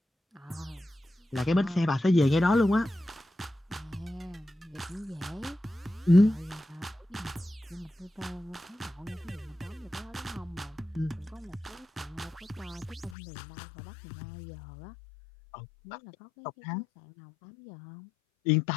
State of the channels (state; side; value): drops out; right; at 13.2 s